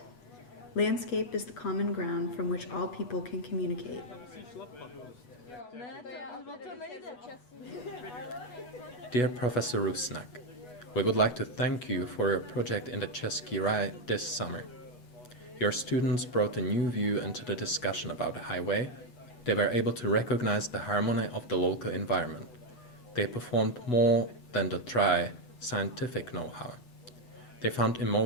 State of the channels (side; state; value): right; late; 8.2 ms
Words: Landscape is the common ground from which all people can communicate. Dear Professor Rusnak, we would like to thank you for your project in the Cesky Raj this summer. Your students brought a new view into the discussion about the highway. They were able to recognize the harmony of the local environment. They performed more than the dry, scientific know-how. They found